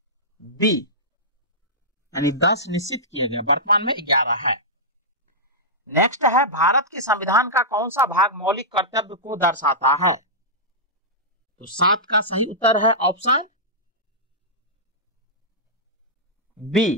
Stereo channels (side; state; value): both; normal; correlation -0.13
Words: बी, यानी 10 निश्चित किया गया, वर्तमान में 11 है। नेक्स्ट है भारत के संविधान का कौन सा भाग मौलिक कर्तव्य को दर्शाता है। तो 7 का सही उत्तर है ऑप्शन